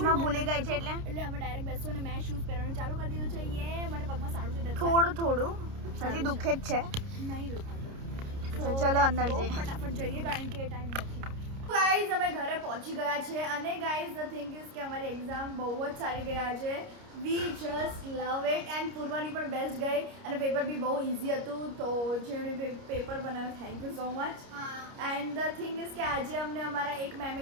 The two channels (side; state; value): left; late; 29 ms